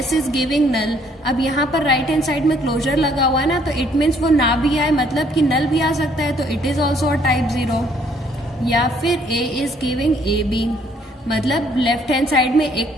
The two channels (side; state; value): both; normal; correlation 0.64